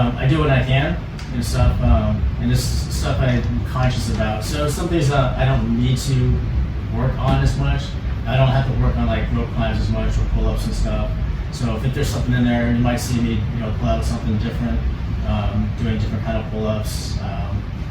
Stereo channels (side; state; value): both; identical; correlation 1.00